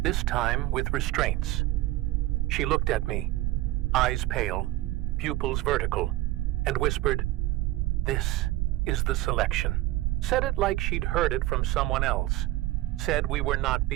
this time with restraints. She looked at me, eyes pale, pupils vertical, and whispered, "This is the selection." Said it like she'd heard it from someone else. Said we were not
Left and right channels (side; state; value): left; quieter; 17.0 dB